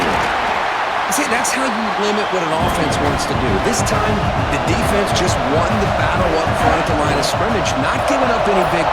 here. See, that's how you limit what an offense wants to do. This time, the defense just won the battle up front at the line of scrimmage, not giving up any big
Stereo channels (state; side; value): identical; both; correlation 1.00